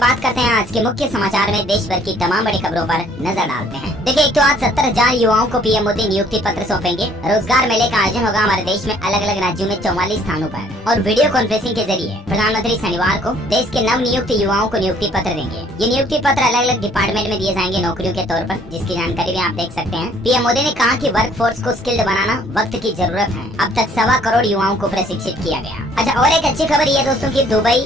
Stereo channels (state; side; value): normal; both; correlation 0.60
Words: करते हैं आज के मुख्य समाचार में देश भर की तमाम बड़ी खबरों पर नजर डालते हैं। देखिए, एक तो आज 70,000 युवाओं को पीएम मोदी नियुक्ति पत्र सौंपेंगे। रोजगार मेले का आयोजन होगा हमारे देश में अलग अलग राज्यों में 44 स्थानों पर। और वीडियो कॉन्फ्रेंसिंग के जरिए प्रधानमंत्री शनिवार को देश के नव नियुक्त युवाओं को नियुक्ति पत्र देंगे। ये नियुक्ति पत्र अलग अलग डिपार्टमेंट में दिए जाएंगे नौकरियों के तौर पर, जिसकी जानकारी भी आप देख सकते हैं। पीएम मोदी ने कहा कि वर्क फोर्स को स्किल्ड बनाना वक्त की जरूरत है। अब तक 1.25 करोड़ युवाओं को प्रशिक्षित किया गया। अच्छा, और एक अच्छी खबर ये दोस्तों की दुबई,